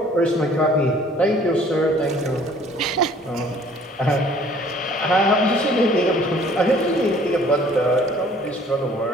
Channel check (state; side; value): normal; both; correlation 0.55